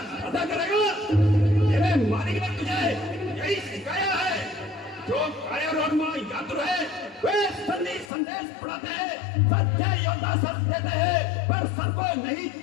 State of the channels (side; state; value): right; drops out; at 8.1 s